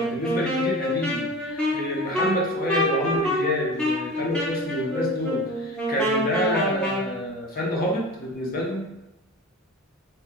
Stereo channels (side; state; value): both; normal; correlation 0.34